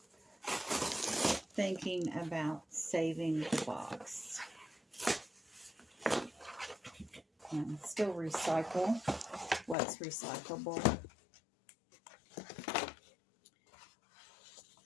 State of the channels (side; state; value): right; drops out; at 9.8 s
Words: thinking about saving the box. And still recycle what's recyclable.